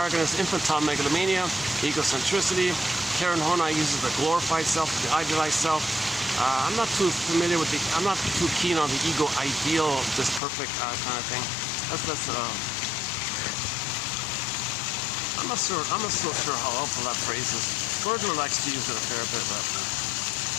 is infantile megalomania, egocentricity. Karen Horney uses the glorified self, the idealized self. I'm not too familiar with I'm not too keen on the ego ideal, this perfect kind of thing. I'm not so sure how helpful that phrase is. Gordon likes to use it a fair bit, but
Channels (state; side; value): drops out; right; at 10.4 s